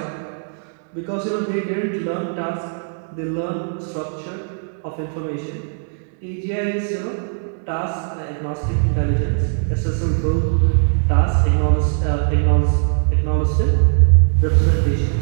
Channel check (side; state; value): left; silent; digital silence